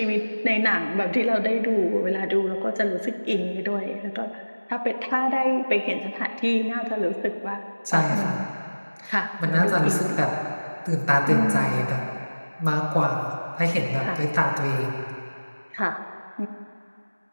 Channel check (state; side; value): inverted; both; correlation -1.00